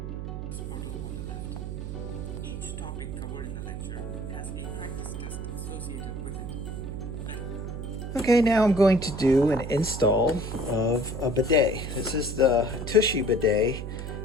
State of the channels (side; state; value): right; noise; hum, 6 dB below the sound